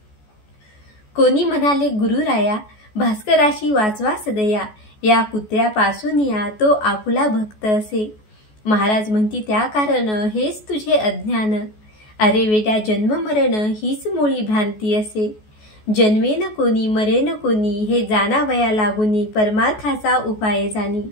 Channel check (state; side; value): late; right; 14 ms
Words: कोणी म्हणाले गुरुराया, भास्कराशी वाचवा सदया, या कुत्र्यापासून या तो आपुला भक्त असे। महाराज म्हणती त्या कारण हेच तुझे अज्ञान, अरे वेड्या जन्म मरण हीच मुळी भ्रांती असे। जन्मेन कोणी मरेन कोणी, हे जाणावया लागुनी, परमार्थाचा उपाय जाणी।